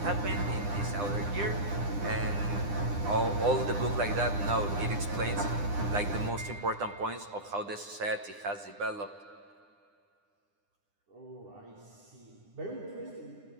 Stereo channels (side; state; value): left; late; 9.8 ms